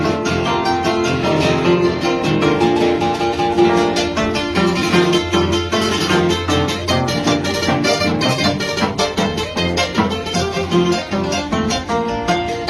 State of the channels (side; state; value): both; identical; correlation 1.00